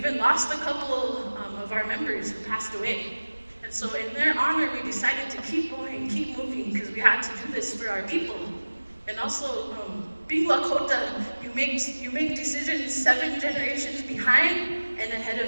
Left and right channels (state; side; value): inverted; both; correlation -1.00